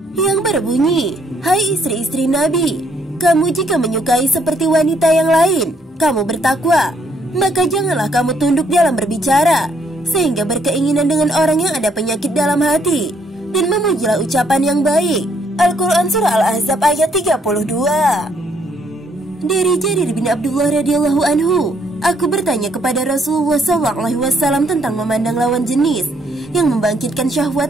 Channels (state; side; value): normal; both; correlation 0.69